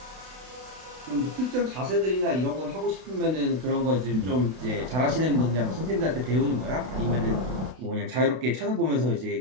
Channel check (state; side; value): late; left; 32 ms